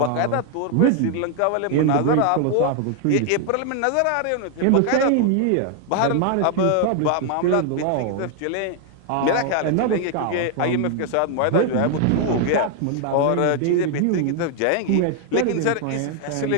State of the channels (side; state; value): both; different; correlation 0.00